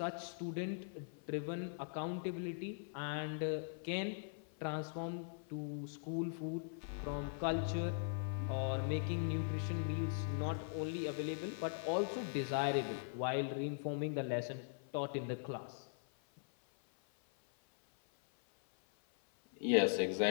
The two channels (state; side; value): silent; right; 51 dB below the other